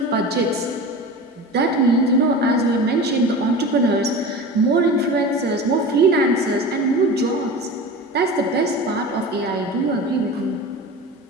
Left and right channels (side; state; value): both; normal; correlation 0.32